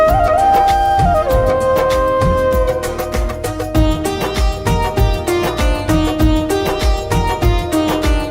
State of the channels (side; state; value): both; identical; correlation 1.00